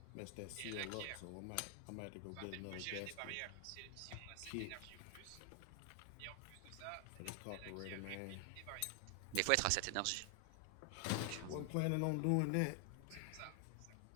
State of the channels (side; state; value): both; different; correlation 0.00